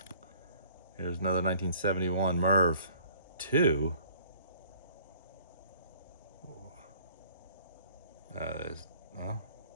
Here's another 1971 Merv 2. Well,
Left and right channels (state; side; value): inverted; both; correlation -0.56